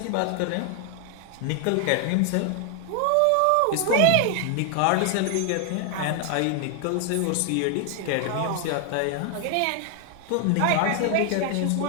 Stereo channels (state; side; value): different; both; correlation 0.00